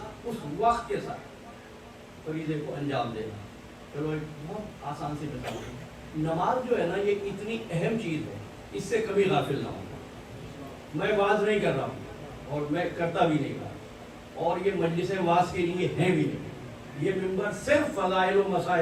اس وقت کے ساتھ فریضے کو انجام دینا. چلو ایک بہت آسان سی مثال ہے. نماز جو ہے نا یہ اتنی اہم چیز ہے، اس سے کبھی غافل نہ ہوں. میں واز نہیں کر رہا ہوں اور میں کرتا بھی نہیں رہا، اور یہ مجلس واز کے لیے ہیں بھی نہیں. یہ ممبر صرف فضائل و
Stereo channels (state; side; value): identical; both; correlation 1.00